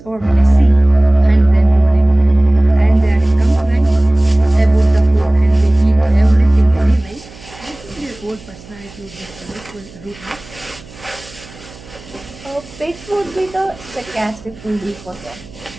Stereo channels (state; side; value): noise; right; hum, 21 dB below the sound